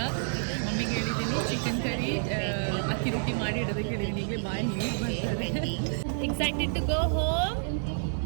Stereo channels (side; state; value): left; silent; digital silence